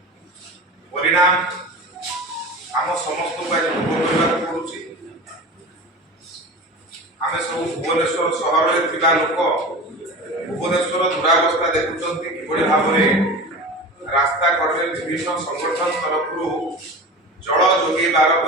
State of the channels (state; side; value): normal; both; correlation 0.32